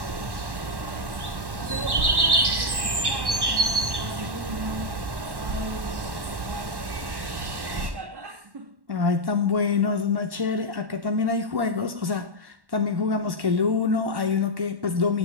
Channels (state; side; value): late; left; 1.1 ms